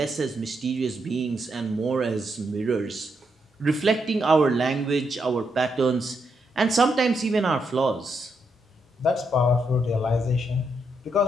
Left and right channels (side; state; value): both; normal; correlation 0.80